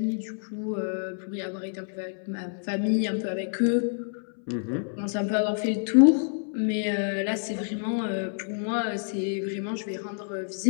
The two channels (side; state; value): right; silent; 60 dB below the other